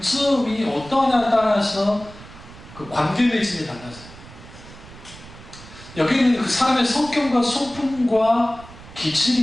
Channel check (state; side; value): noise; right; rumble, 18 dB below the sound